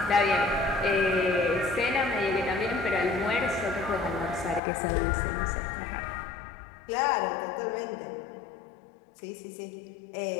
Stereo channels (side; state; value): right; drops out; at 4.6 s